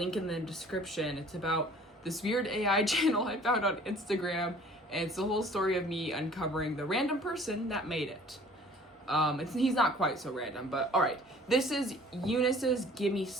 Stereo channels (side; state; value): both; normal; correlation 0.52